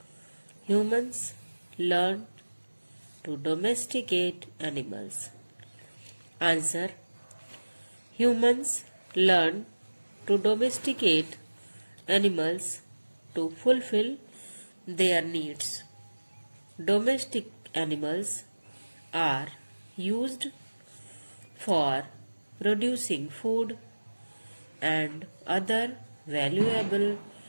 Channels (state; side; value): inverted; both; correlation -1.00